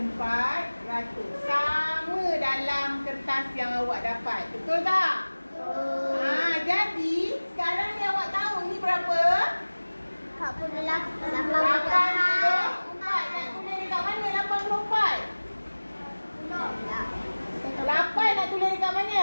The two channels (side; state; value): both; inverted; correlation -1.00